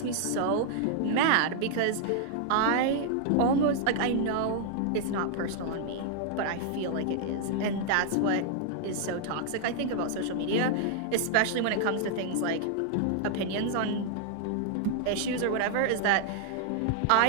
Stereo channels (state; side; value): different; both; correlation -0.01